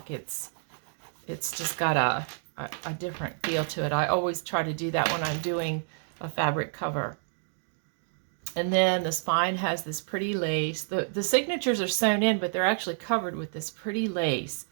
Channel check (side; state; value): left; silent; digital silence